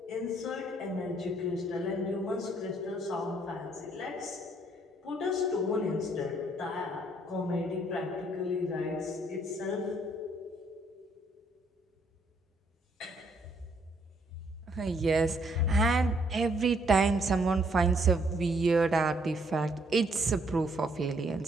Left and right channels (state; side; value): normal; both; correlation 0.68